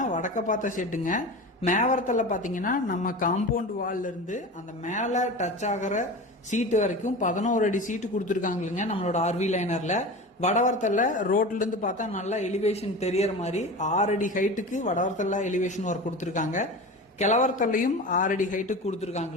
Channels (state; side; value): normal; both; correlation 0.31